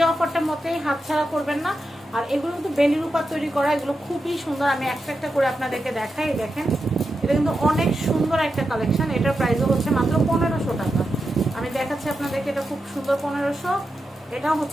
অফারটার মতেই হাতছাড়া করবেন না। আর এগুলো কিন্তু বেলির উপর তৈরি করা, এগুলো খুবই সুন্দর। আমি একটা একটা করে আপনাদেরকে দেখাই। দেখেন এটা কিন্তু অনেক সুন্দর একটা কালেকশন। এটার প্রাইসও হচ্ছে মাত্র 1500 টাকা। আমি দেখাচ্ছি আপনাদেরকে, এটা খুব সুন্দর 1500, এটাও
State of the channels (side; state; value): both; normal; correlation 0.88